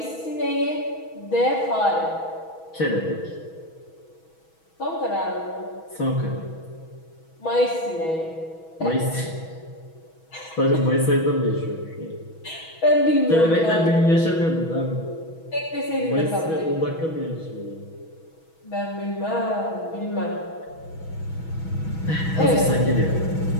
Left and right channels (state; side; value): late; right; 6.2 ms